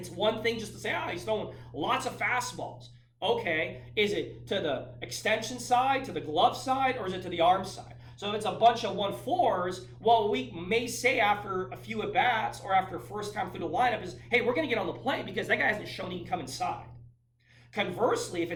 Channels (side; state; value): both; identical; correlation 1.00